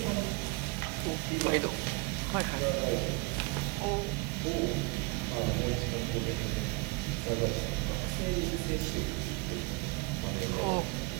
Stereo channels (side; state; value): left; quieter; 25.3 dB